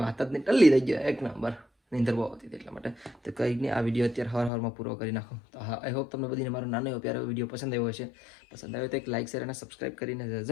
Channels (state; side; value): drops out; right; at 4.5 s